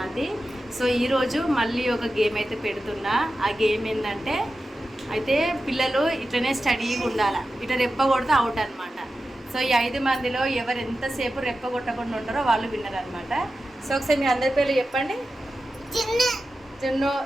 So ఈరోజు మళ్ళీ ఒక గేమ్ అయితే పెడుతున్నా. ఆ గేమ్ ఏంటంటే అయితే పిల్లలు ఇట్లనే స్టడీగా ఉండాలి. ఇట్లా రెప్ప కొడితే అవుట్ అనమాట. సో ఈ 5 మందిలో ఎవరు ఎంతసేపు రెప్ప కొట్టకుండా ఉంటారో వాళ్ళు విన్నర్ అనమాట. సో ఒకసారి మీ అందరి పేర్లు చెప్పండి. చిన్ను,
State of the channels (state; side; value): normal; both; correlation 0.92